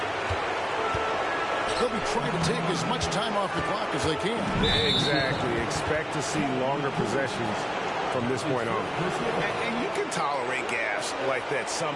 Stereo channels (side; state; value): both; identical; correlation 1.00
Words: They'll be trying to take as much time off the clock as they can. Exactly. Expect to see longer possessions from this point on. And you can tolerate gaps like that